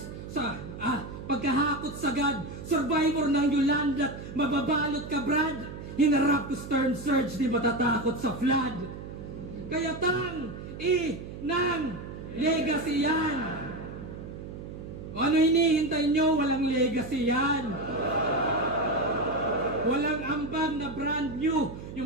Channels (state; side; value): noise; right; hum, 11 dB below the sound